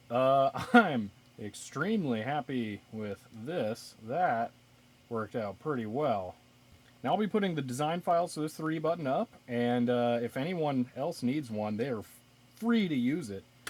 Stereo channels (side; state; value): both; identical; correlation 1.00